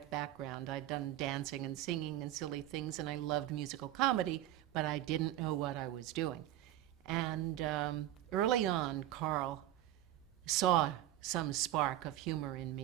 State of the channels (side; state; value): left; quieter; 13.7 dB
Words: background. I'd done dancing and singing and silly things, and I loved musical comedy, but I didn't know what I was doing. And early on, Carl saw some spark of humor in